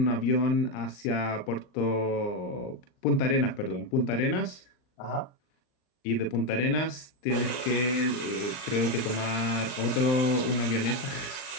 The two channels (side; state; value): right; late; 40 ms